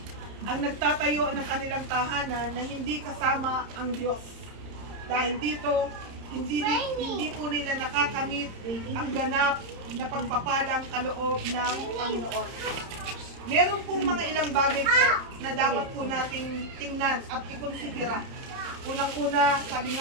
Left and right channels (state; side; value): late; left; 31 ms